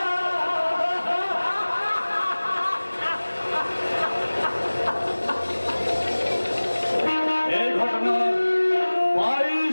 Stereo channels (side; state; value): both; inverted; correlation -1.00